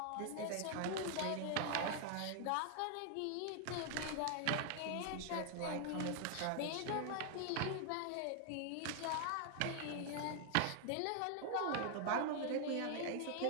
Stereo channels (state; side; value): different; both; correlation 0.00